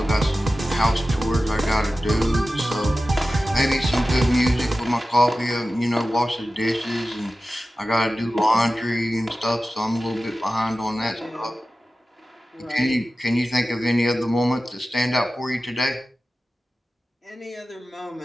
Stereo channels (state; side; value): normal; both; correlation 0.94